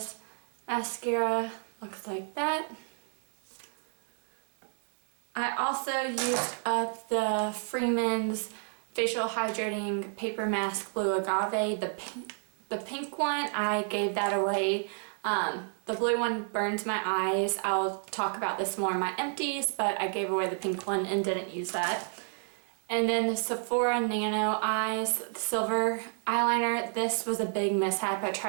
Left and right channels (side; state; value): left; silent; 57 dB below the other